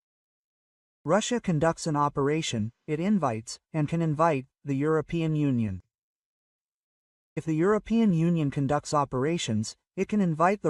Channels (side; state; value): both; identical; correlation 1.00